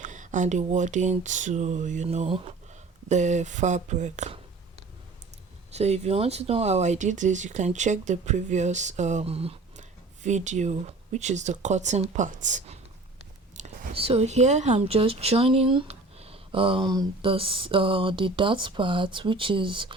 and the wording to the fabric. So if you want to know how I did this, you can check the previous video, which is the cutting part. So here I'm just joining the dot part, which is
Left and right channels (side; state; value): left; quieter; 3.3 dB